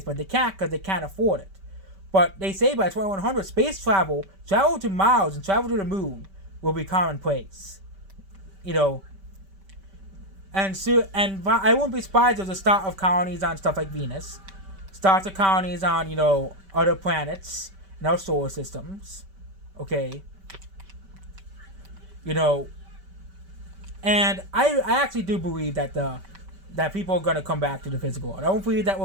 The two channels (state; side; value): late; left; 5.2 ms